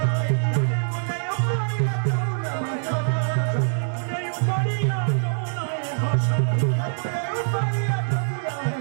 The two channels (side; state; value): left; silent; digital silence